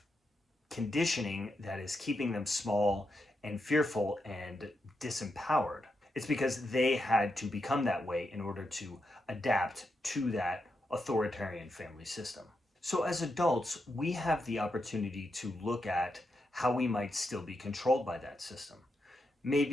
conditioning that is keeping them small and fearful and disempowered. It's because they had to become that way in order to adapt to that authoritarian family system. So as adults, we have the opportunity to look at how we might still be controlled by that system.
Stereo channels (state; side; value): normal; both; correlation 0.85